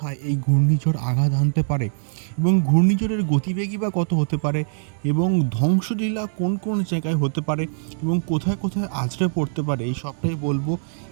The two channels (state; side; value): silent; left; digital silence